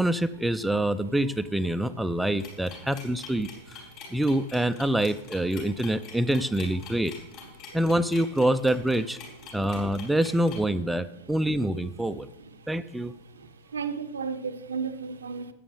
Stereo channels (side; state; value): both; normal; correlation 0.83